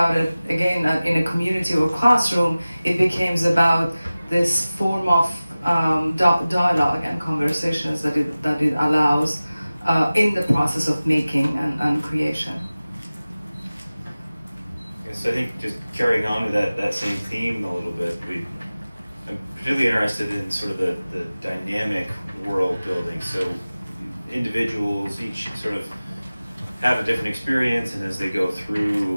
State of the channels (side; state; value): both; inverted; correlation -0.97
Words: it again in a community or classroom, it becomes about this form of dialogue and conversations that it allows in the process of making and creation. So I think just carrying on with that same theme a little bit, I'm particularly interested in sort of the dynamic world building. So individuals each sort of have a different experience, and as they go